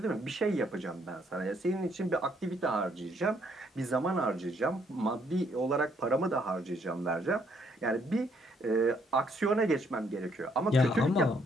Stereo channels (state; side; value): normal; both; correlation 0.69